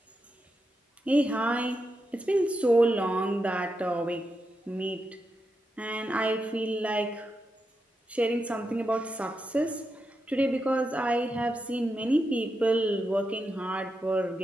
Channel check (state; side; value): normal; both; correlation 0.86